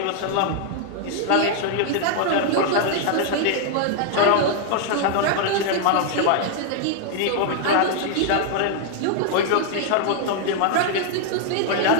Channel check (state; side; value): different; both; correlation 0.00